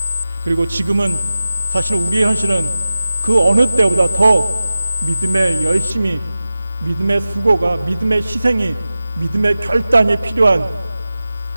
그리고 지금은 사실 우리의 현실은 그 어느 때보다 더 믿음의 열심이, 믿음의 수고가, 믿음의 희생이, 믿음의 결단이 필요한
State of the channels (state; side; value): inverted; both; correlation -0.95